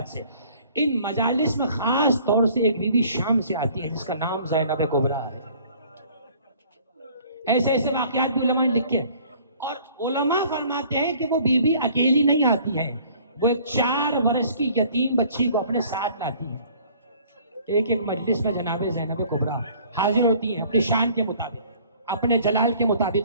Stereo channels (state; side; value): inverted; both; correlation -0.53